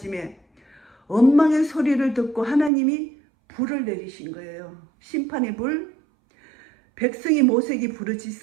원망의 소리를 듣고 하나님이 불을 내리신 거예요. 심판의 불. 백성이 모세에게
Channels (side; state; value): left; drops out; at 2.7 s